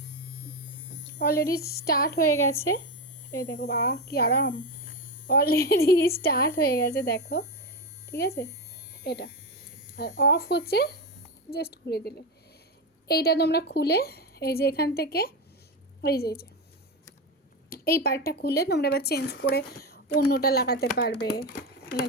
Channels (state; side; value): normal; both; correlation 0.15